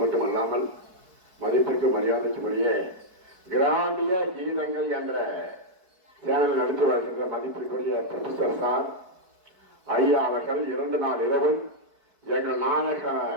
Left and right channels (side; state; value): left; late; 4.6 ms